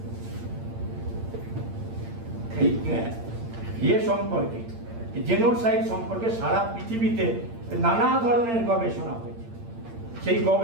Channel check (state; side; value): late; left; 8.8 ms